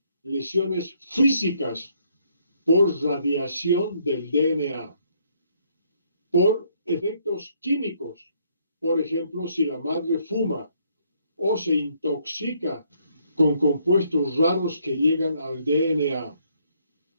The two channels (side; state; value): both; inverted; correlation -0.69